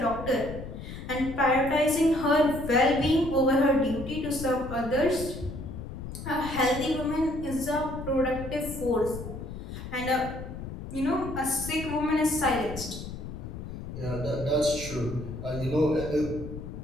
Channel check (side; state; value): left; noise; rumble, 9 dB below the sound